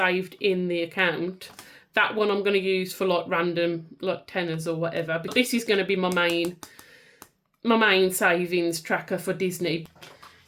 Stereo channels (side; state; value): both; identical; correlation 1.00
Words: in the account. That one I'm going to use for like random like tenors or whatever. But this is going to be my main savings tracker for Disney.